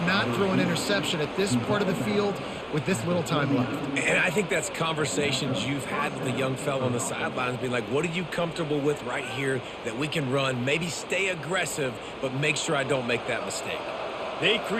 throw an interception at this part of the field with this little time left. And I think that's conversations you've had with the young fellow on the sidelines, being like, what are you comfortable with right here that we can run? Maybe stay aggressive, but make sure I don't make that mistake. They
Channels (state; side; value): identical; both; correlation 1.00